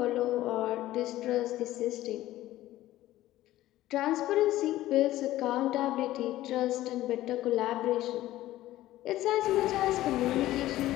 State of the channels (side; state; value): right; quieter; 15.2 dB